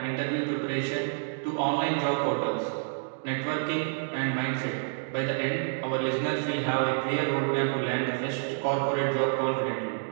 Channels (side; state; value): left; silent; digital silence